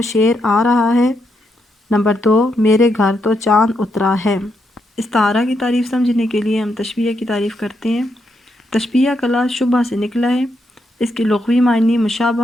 شیر آ رہا ہے، نمبر 2 میرے گھر تو چاند اترا ہے۔ استعارہ کی تعریف سمجھنے کے لیے ہم تشبیہ کی تعریف کرتے ہیں۔ تشبیہ کا لفظ شبہ سے نکلا ہے، اس کے لغوی معنی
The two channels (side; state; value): both; normal; correlation 0.80